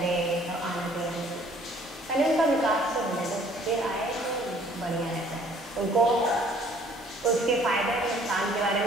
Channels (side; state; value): both; normal; correlation 0.57